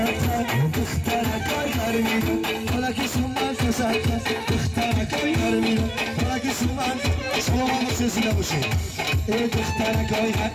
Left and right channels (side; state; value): both; identical; correlation 1.00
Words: دخترک آیار میرم فلکی سومن تساقط دخترک آیار میرم فلکی سومن شما ما سلسله باشید دخترک آیار